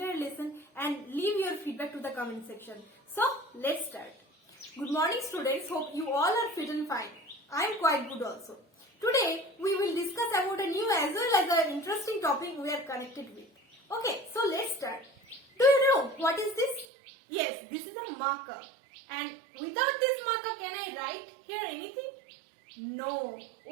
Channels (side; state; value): left; drops out; at 16.9 s